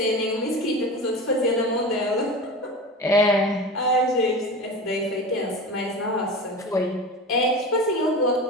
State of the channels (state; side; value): normal; both; correlation 0.30